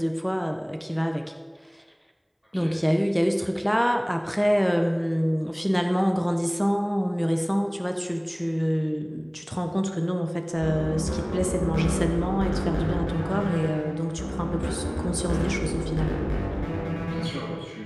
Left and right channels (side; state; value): both; identical; correlation 1.00